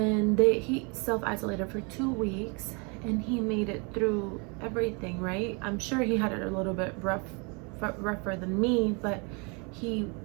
he self-isolated for 2 weeks, and he made it through everything, right? I'm sure he had it a little bit rougher than me, but he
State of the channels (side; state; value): left; quieter; 32.7 dB